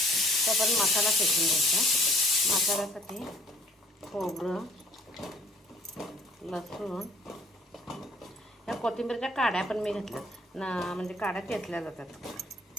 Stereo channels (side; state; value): both; normal; correlation 0.57